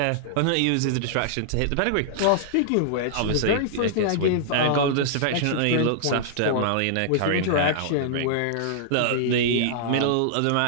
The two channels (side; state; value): both; different; correlation -0.01